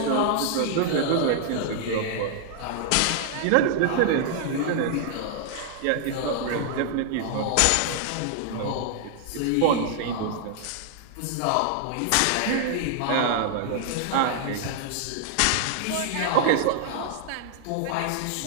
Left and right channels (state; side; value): different; both; correlation 0.00